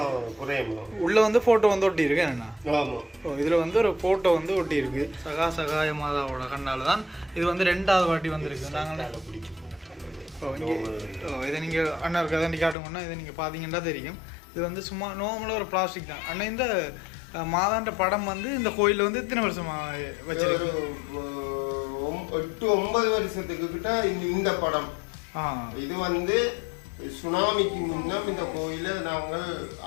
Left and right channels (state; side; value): drops out; right; at 12.8 s